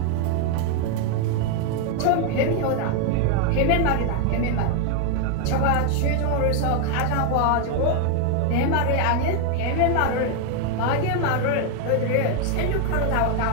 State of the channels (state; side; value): different; both; correlation 0.00